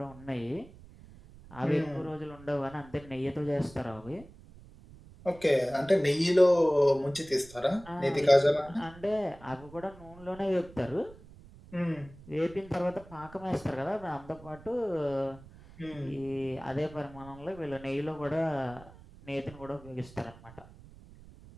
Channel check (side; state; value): right; noise; rumble, 20 dB below the sound